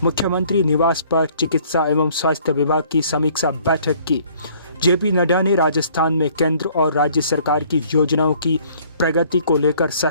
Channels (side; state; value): both; inverted; correlation -0.58